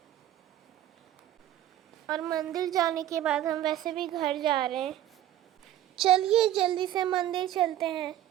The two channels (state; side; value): quieter; left; 12.5 dB